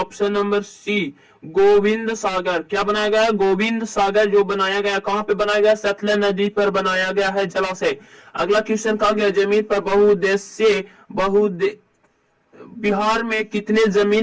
नंबर सी, गोविंद सागर। क्या बनाया गया है? गोविंद सागर जो बनाया गया। कहां पे बनाया गया? सतलज नदी पर बनाया गया है जलाशय। अगला क्वेश्चन कहा गया जमीन पर बहुउद्देशीय बिहार में कितने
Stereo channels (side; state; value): both; identical; correlation 1.00